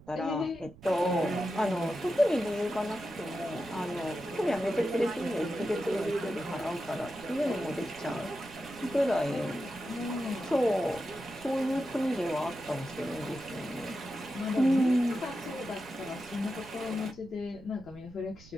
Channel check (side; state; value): right; noise; rumble, 20 dB below the sound